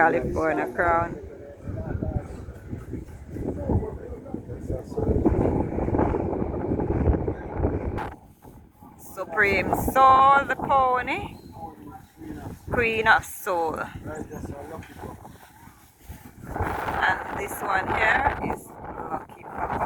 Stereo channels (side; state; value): both; identical; correlation 1.00